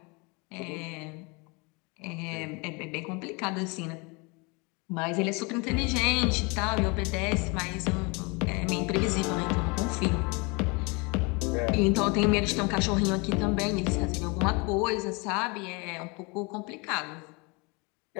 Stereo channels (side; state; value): right; quieter; 29.3 dB